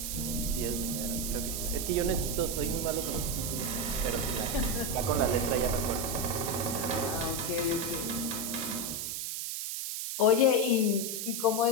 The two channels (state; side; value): noise; right; hiss, 3 dB below the sound